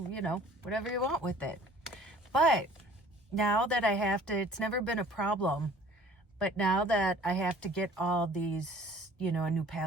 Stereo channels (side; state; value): both; normal; correlation 0.51